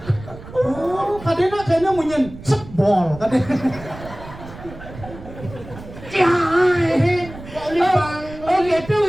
oh kadena kayaknya munyen sebol kadena Oh gitu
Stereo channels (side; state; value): right; noise; rumble, 15 dB below the sound